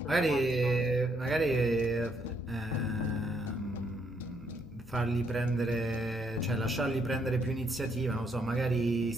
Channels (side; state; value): both; normal; correlation 0.72